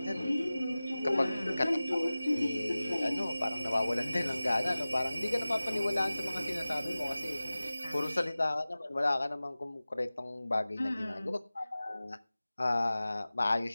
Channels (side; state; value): both; inverted; correlation -0.97